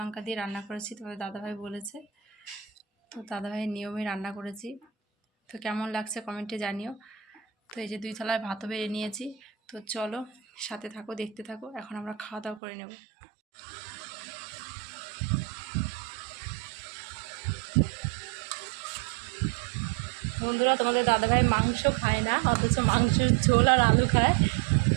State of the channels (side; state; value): left; drops out; at 12.6 s